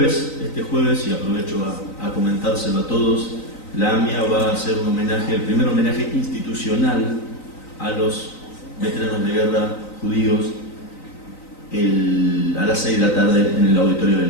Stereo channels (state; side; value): late; right; 3.9 ms